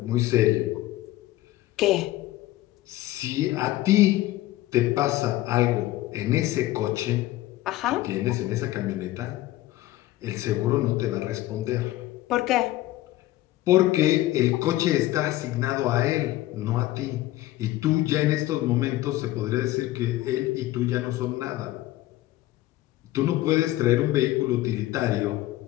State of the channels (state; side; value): quieter; right; 16.1 dB